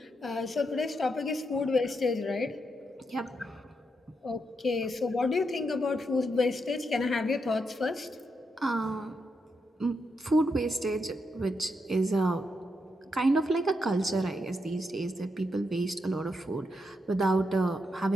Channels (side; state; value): both; normal; correlation 0.82